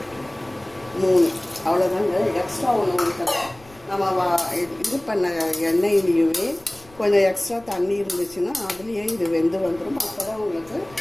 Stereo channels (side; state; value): left; noise; rumble, 25 dB below the sound